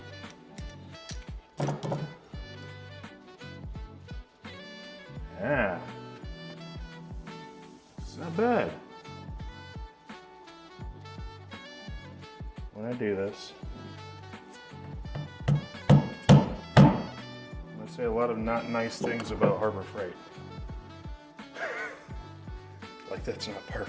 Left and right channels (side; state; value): both; identical; correlation 1.00